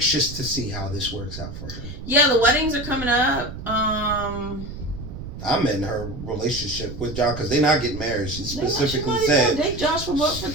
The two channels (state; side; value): noise; right; rumble, 10 dB below the sound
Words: to see how this works out for her. Yeah, the weddings are coming up. I'm in her relationship with Josh because they're not getting married. She specifically said date Josh for